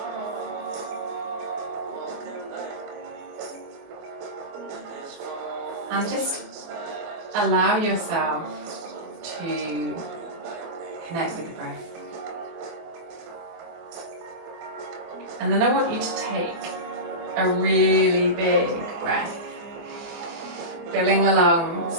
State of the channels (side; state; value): left; late; 24 ms